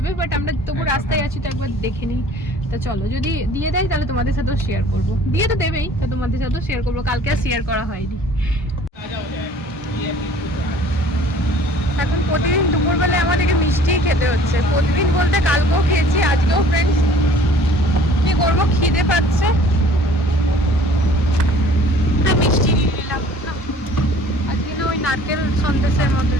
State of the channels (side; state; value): both; normal; correlation 0.51